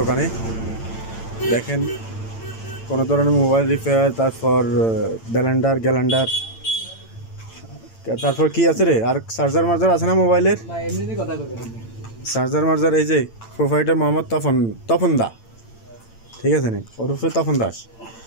দেখেন, কোনো ধরনের মোবাইল রিপেয়ার, তারপর গ্যালান্ডার, তারপর কি আছে রে, আর চার্জার মার্জার আছে না মোবাইলের? চার্জার মার্জার এই যে প্রোভাইডার মোহাম্মদ তপন দা, ঠিক আছে নি, ওরফে তপন দাস।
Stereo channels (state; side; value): late; right; 8.9 ms